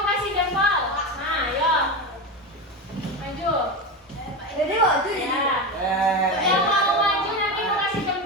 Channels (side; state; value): both; normal; correlation 0.20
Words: Maju. Jadi maju jadi. Ya. Yang mau maju nanti mau kasih